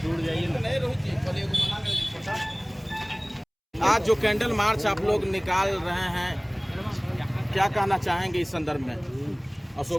जाइए ना। आज जो कैंडल मार्च आप लोग निकाल रहे हैं, क्या कहना चाहेंगे इस संदर्भ में?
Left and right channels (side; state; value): both; identical; correlation 1.00